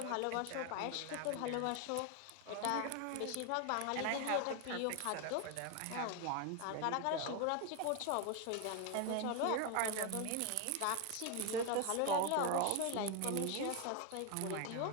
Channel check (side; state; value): both; different; correlation 0.01